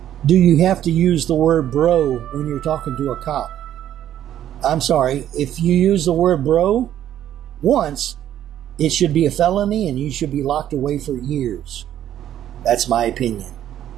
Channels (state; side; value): quieter; left; 11.3 dB